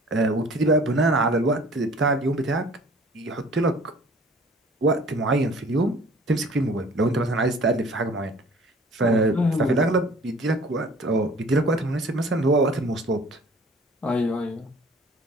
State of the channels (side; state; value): both; normal; correlation 0.50